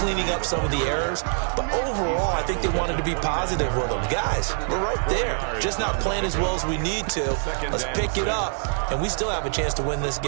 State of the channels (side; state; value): left; silent; digital silence